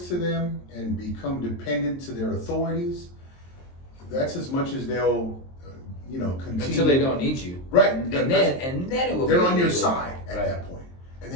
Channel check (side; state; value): right; late; 23 ms